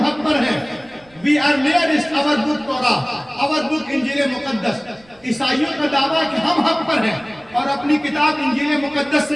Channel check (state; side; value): noise; right; rumble, 30 dB below the sound